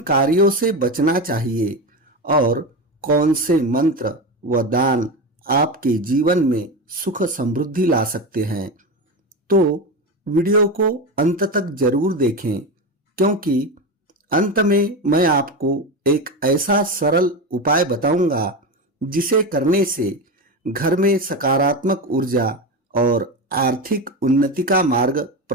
से बचना चाहिए और कौन से मंत्र व दान आपके जीवन में सुख समृद्धि ला सकते हैं। तो वीडियो को अंत तक जरूर देखें, क्योंकि अंत में मैं आपको एक ऐसा सरल उपाय बताऊंगा जिसे करने से घर में सकारात्मक ऊर्जा और आर्थिक उन्नति का मार्ग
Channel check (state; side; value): normal; both; correlation 0.19